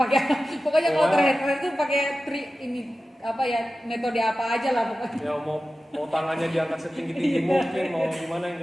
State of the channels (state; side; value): normal; both; correlation 0.94